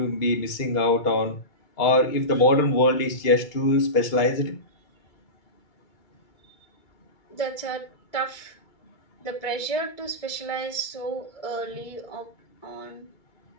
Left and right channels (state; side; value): late; right; 2.3 ms